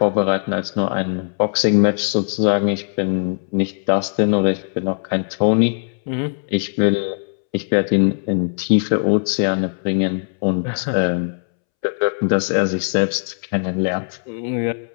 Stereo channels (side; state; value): right; silent; 66 dB below the other